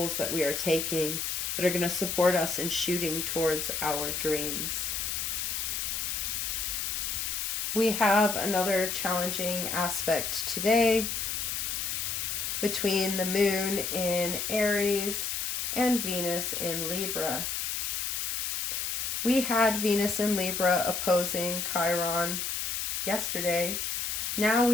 that we are taking, that are going to support us in shooting towards our dreams. We have another challenging aspect today between the moon in Aries and Venus in Libra. We had Venus in Libra opposing Chiron yesterday. Now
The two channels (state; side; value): noise; left; hiss, 1 dB below the sound